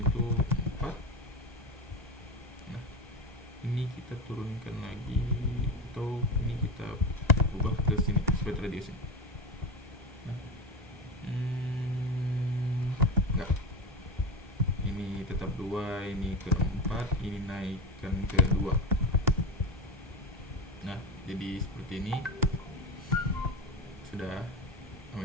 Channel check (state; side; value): normal; both; correlation 0.21